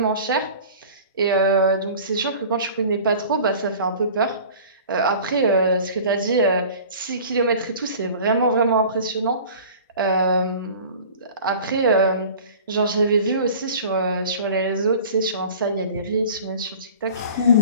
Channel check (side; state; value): both; inverted; correlation -0.43